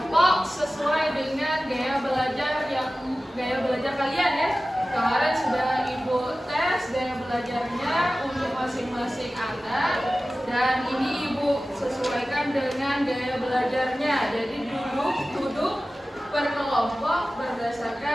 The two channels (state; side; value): normal; both; correlation 0.96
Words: sesuai dengan gaya belajar kalian ya. Kemarin sudah Ibu tes gaya belajarnya untuk masing-masing anak, dan ini Ibu sesuaikan dengan gaya belajarnya. Jadi duduk per kelompok